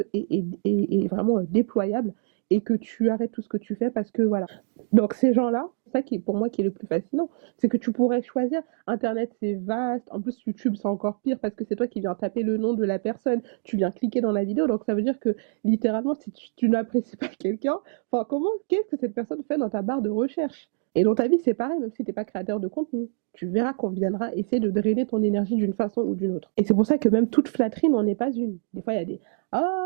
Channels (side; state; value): left; silent; digital silence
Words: et vraiment déployable, et que tu arrêtes tout ce que tu fais parce que voilà. Donc ces gens-là, ça qui est pour moi qui est le plus fascinant, c'est que tu pourrais choisir. Internet c'est vaste, en plus YouTube c'est encore pire parce que c'est toi qui viens taper le nom de la personne, tu viens cliquer dans la vidéo, donc ça veut dire que littéralement si tu n'apprécies pas quelqu'un, enfin qu'est-ce que cette personne fait dans ta barre de recherche? Et dans ta vie c'est pareil, même si t'es pas créateur de contenu. Tu verras qu'on viendra essayer de drainer ton énergie d'une façon ou d'une autre. Et c'est pour ça que même toute flatterie n'en est pas une. Des fois, il y a des «